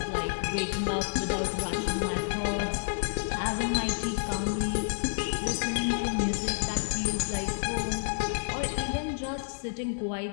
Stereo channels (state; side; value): silent; right; digital silence